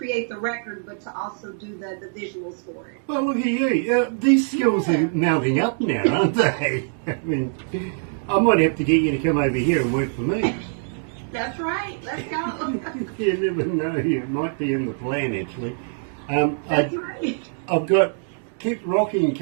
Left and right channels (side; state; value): left; silent; digital silence